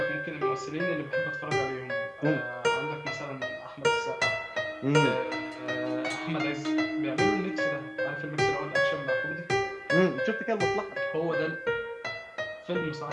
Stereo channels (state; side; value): identical; both; correlation 1.00